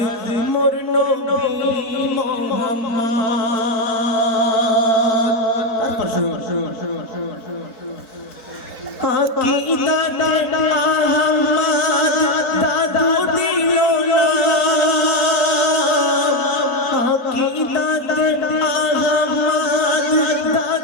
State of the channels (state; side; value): late; right; 4.6 ms